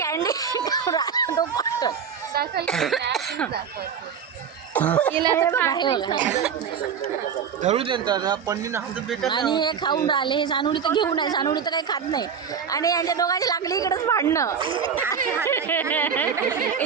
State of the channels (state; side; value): quieter; left; 7.1 dB